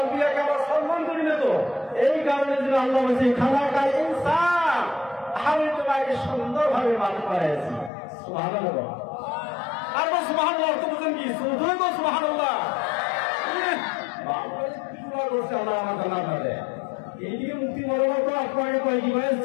আমরা সম্মান করি না তো, এই কারণে যদি আল্লাহ বলছে খানা খাই ইনসান, আমি তোমাকে সুন্দরভাবে মানুষ বানিয়েছি। সুবহানাল্লাহ। আর সুবহানাল্লাহ অর্থ বুঝেন কি? শুধুই তো সুবহানাল্লাহ। আল্লাহ আমার জান্নাত দেয়। এইদিকে মুক্তি বলবো তো আপনাকে কয় কি ভাই,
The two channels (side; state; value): right; drops out; at 7.9 s